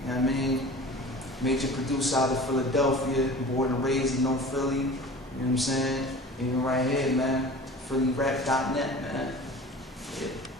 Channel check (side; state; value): both; normal; correlation 0.40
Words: know what I mean? Major producer out of Philadelphia, born and raised in North Philly, you know what I'm saying? Even right here, man, PhillyRap.net, man. Yeah.